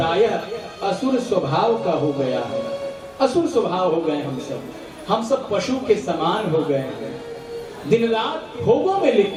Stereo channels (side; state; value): both; identical; correlation 1.00